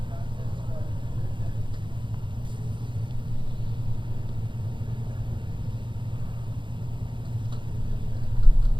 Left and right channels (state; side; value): late; left; 0.23 ms